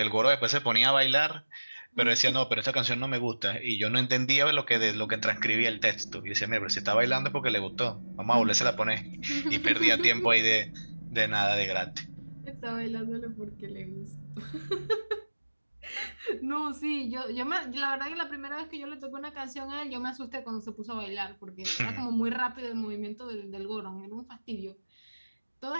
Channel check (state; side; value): inverted; both; correlation -1.00